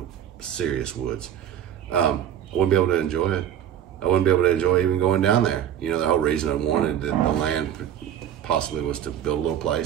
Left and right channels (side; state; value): left; quieter; 10.2 dB